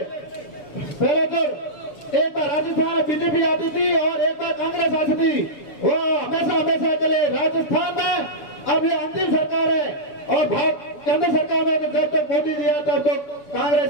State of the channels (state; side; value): late; right; 7.1 ms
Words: तो एक बार राजस्थान में बीजेपी आती थी और एक बार कांग्रेस आती थी, वो हमेशा के लिए राजस्थान में अब ये अंतिम सरकार है। और केंद्र सरकार में तो जब तक मोदी जी आता तो कांग्रेस